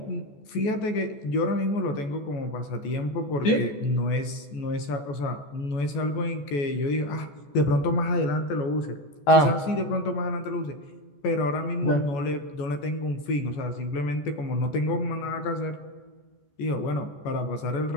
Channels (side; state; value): right; late; 14 ms